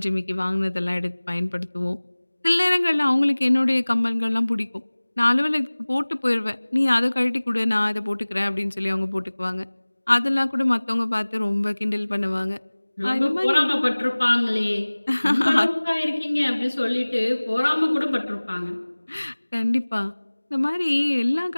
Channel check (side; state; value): both; inverted; correlation -1.00